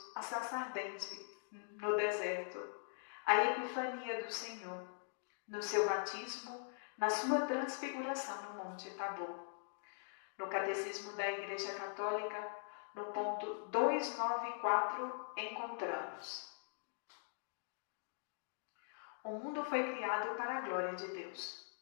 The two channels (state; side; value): silent; right; digital silence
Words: a sarça ardente no deserto, a epifania do Senhor, no seu batismo, na sua transfiguração no Monte Tabor. No Catecismo da Igreja Católica, no ponto 294, encontramos: o mundo foi criado para a glória de Deus.